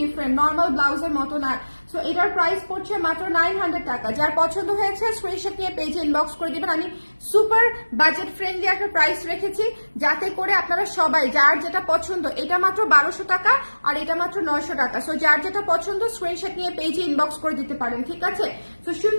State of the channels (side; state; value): both; inverted; correlation -1.00